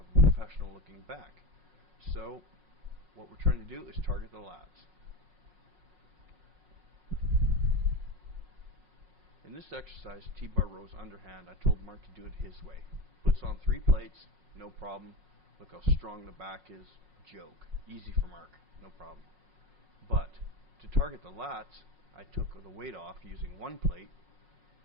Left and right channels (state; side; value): late; left; 5.5 ms